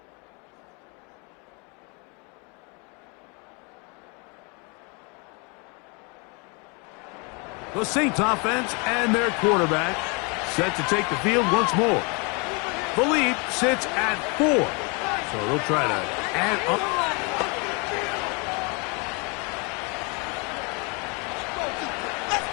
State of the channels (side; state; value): right; quieter; 32.1 dB